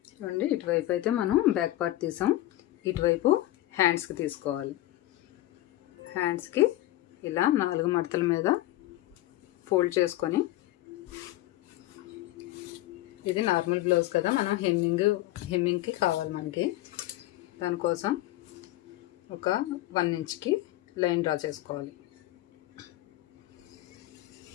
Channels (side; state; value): right; quieter; 16.0 dB